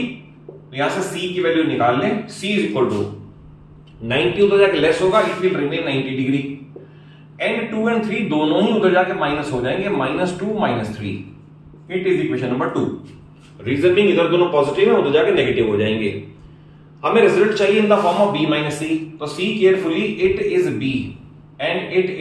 तो यहां से C की वैल्यू निकाल लें, C इज इक्वल टू 90 उधर जाके लेस होगा, it will remain 90 degree, and 2 and 3 दोनों ही उधर जाके माइनस हो जाएंगे, -2 -3। It is equation number 2। Reason being इधर दोनों पॉजिटिव है, उधर जाके नेगेटिव हो जाएंगे। हमें रिजल्ट चाहिए in the form of B minus C, तो C carefully, it is B and it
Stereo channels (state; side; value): identical; both; correlation 1.00